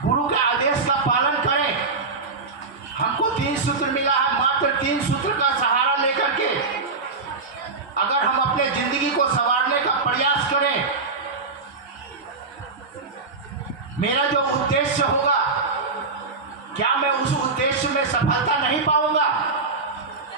गुरु के आदेश का पालन करें, हमको 3 सूत्र मिला है, मात्र 3 सूत्र का सहारा लेकर के अगर हम अपने जिंदगी को संवारने का प्रयास करें, मेरा जो उद्देश्य होगा, क्या मैं उस उद्देश्य में सफलता नहीं पाऊंगा?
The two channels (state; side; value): quieter; left; 4.1 dB